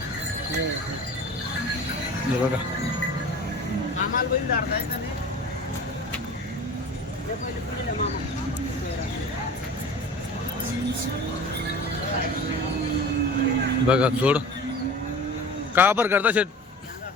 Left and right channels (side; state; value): both; normal; correlation 0.38